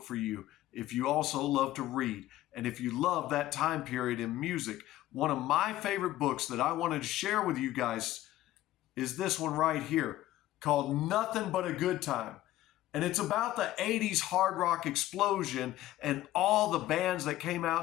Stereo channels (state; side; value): quieter; right; 14.9 dB